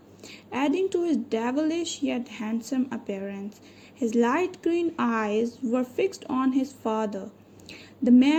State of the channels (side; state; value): both; identical; correlation 1.00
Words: adding to his devilish yet handsome appearance. His light green eyes were fixed on his father. The